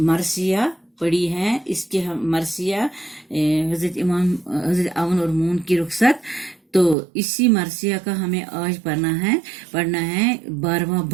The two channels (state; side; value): drops out; left; at 7.0 s